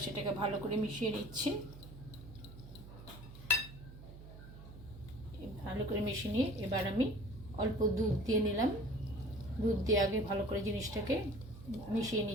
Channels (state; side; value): noise; right; hum, 15 dB below the sound